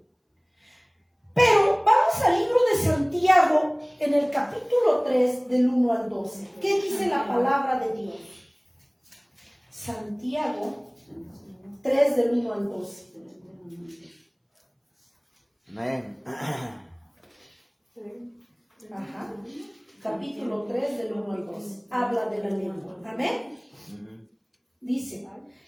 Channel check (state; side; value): identical; both; correlation 1.00